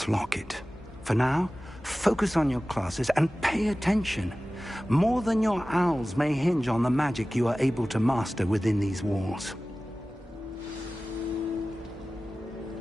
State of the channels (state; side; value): normal; both; correlation 0.97